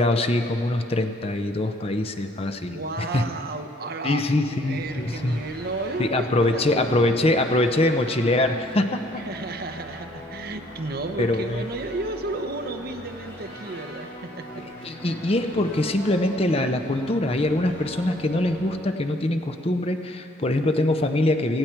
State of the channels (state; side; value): normal; both; correlation 0.62